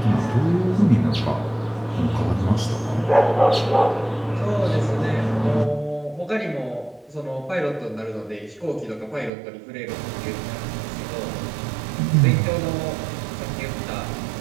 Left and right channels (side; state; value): left; drops out; at 9.3 s